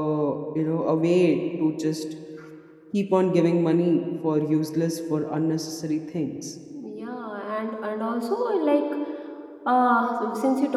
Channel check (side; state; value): both; identical; correlation 1.00